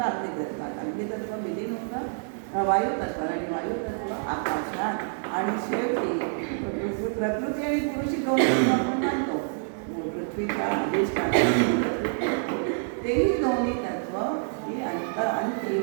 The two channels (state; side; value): silent; left; digital silence